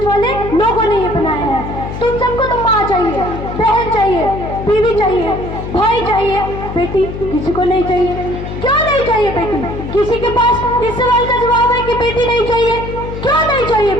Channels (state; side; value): noise; left; hum, 8 dB below the sound